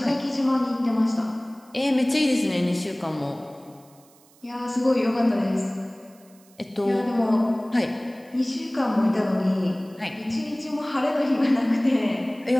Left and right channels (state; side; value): noise; right; hiss, 29 dB below the sound